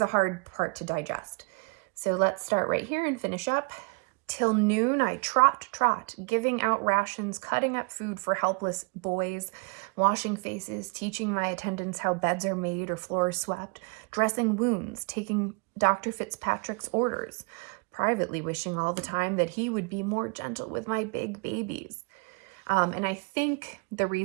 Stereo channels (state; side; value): quieter; left; 32.8 dB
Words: a hard part to digest. So let's start right here and finish up. Till noon I trot, giving out rations, cutting up food for helpless boys, washing faces, teaching my attendants how beds are made or floors swept, dressing wounds, taking Dr. Fitzpatrick's orders, privately wishing all the time that he would be more gentle with my big babies. And I think the